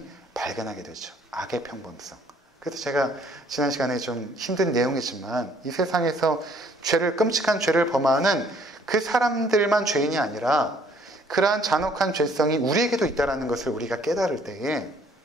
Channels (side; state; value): both; normal; correlation 0.61